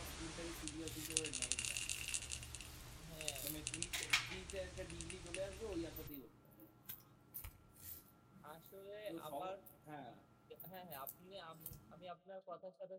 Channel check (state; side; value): identical; both; correlation 1.00